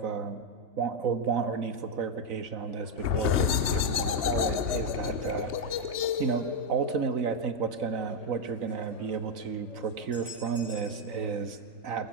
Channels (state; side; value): late; left; 3.2 ms